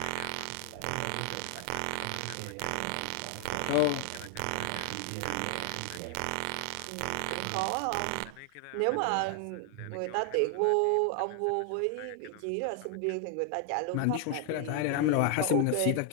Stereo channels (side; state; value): both; different; correlation 0.00